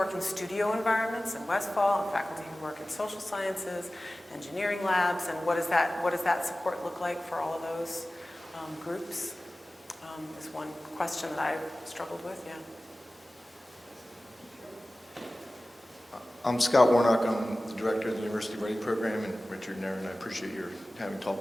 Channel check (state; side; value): normal; both; correlation 0.97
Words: in studio environments in Westfall, and faculty who work in social sciences, engineering labs, and what does that support look like for all of those groups? Is one question that I've struggled with, yeah. I'm Scott Warnock. I'm the director of the University Writing Program, and Richard and Erin, I appreciate your having